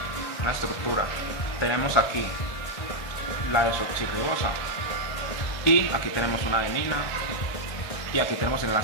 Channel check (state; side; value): late; right; 1.6 ms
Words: una estructura. Tenemos aquí la desoxirribosa y aquí tenemos una adenina y aquí tenemos el